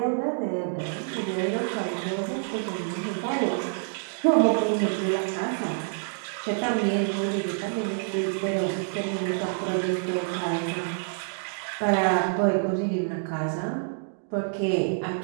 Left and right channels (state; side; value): silent; left; digital silence